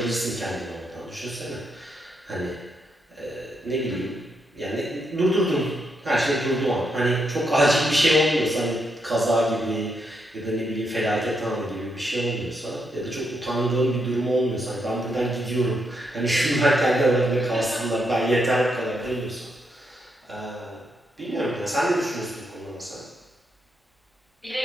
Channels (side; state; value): both; normal; correlation 0.80